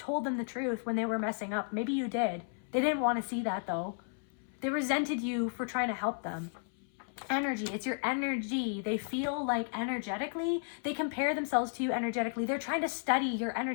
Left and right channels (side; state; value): right; silent; 55 dB below the other